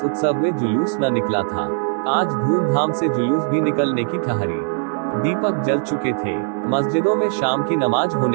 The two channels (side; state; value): left; silent; 58 dB below the other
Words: उत्सव में जुलूस न निकला था। आज धूमधाम से जुलूस भी निकलने की ठहरी। दीपक जल चुके थे। मस्जिदों में शाम की नमाज